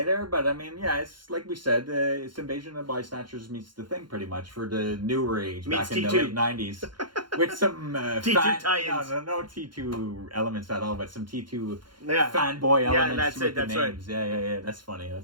there. But I mean, yeah, it's like we said, it's Invasion of the Body Snatchers meets The Thing pretty much for the newer age Meets back in T2. the late 90s. With some T2 tie-ins. No T2 elements at all, but some T2 Yeah. fanboy elements. Yeah, that's with it. That's the names. Right. Yeah. That's funny.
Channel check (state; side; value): late; left; 0.72 ms